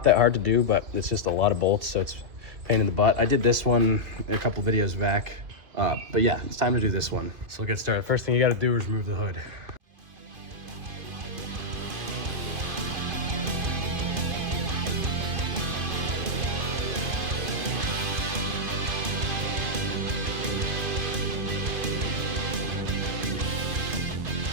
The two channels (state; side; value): late; left; 2.5 ms